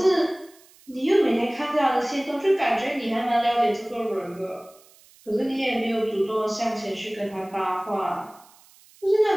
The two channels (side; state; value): right; noise; hiss, 27 dB below the sound